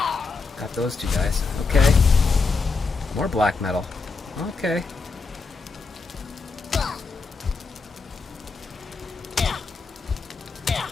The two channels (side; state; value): right; quieter; 4.4 dB